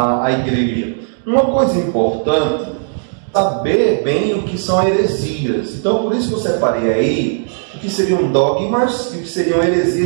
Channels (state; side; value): silent; left; digital silence